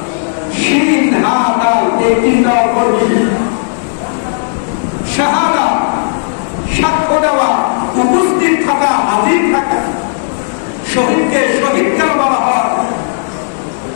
শিন হা দাল এই তিনটা অক্ষর বিশিষ্ট। শাহাদা সাক্ষ্য দেওয়া, উপস্থিত থাকা, হাজির থাকা। শহীদকে শহীদ কেন বলা হয়?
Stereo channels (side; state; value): right; silent; digital silence